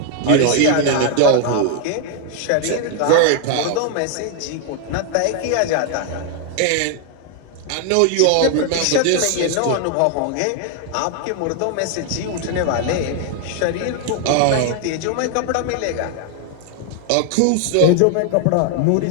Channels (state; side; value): different; both; correlation 0.00